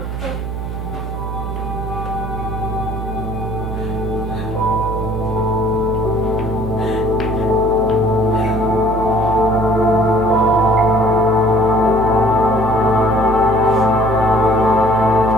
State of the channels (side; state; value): right; noise; hum, 5 dB below the sound